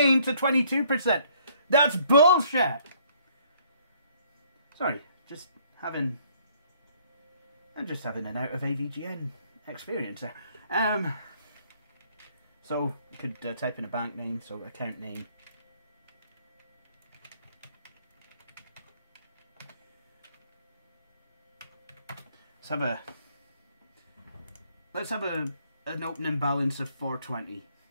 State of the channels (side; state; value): both; inverted; correlation -0.64